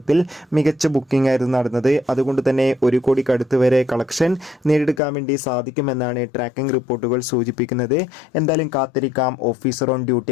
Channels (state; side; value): drops out; right; at 5.0 s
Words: മികച്ച ബുക്കിംഗ് ആയിരുന്നു നടന്നത്. അതുകൊണ്ട് തന്നെ 1 കോടിക്കടുത്ത് വരെ കളക്ഷൻ നേടിയെടുക്കാൻ വേണ്ടി സാധിക്കുമെന്നാണ് ട്രാക്കിംഗ് റിപ്പോർട്ടുകൾ സൂചിപ്പിക്കുന്നത്. എന്തായാലും കാത്തിരിക്കാം ഓഫീസർ ഓൺ ഡ്യൂട്ടി